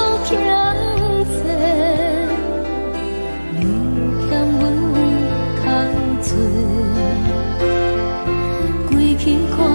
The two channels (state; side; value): inverted; both; correlation -1.00